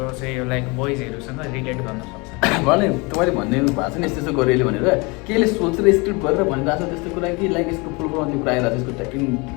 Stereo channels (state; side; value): quieter; right; 27.7 dB